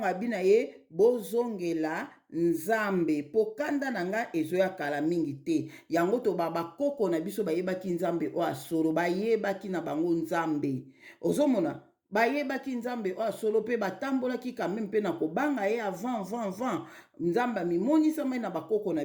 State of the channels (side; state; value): both; identical; correlation 1.00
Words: abina ye bozongela nzambe pokandana nanga ezoya kala mingi te yango to bakoko na biso bayebaki nzambe o asolo bayebaki na bango nzambe ozomona bayebaki nzambe o asolo pe batambolaki quand même pe na kobanga ye avant nzambe mimonisa mai na bakoko na